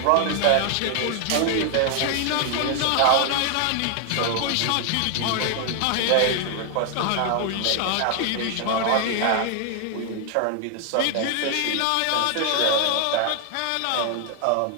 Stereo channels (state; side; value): different; both; correlation 0.00